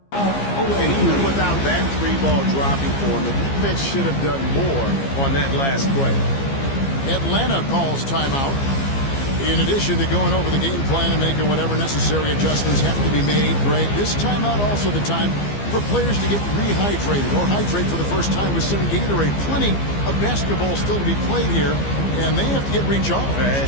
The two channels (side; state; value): right; late; 15 ms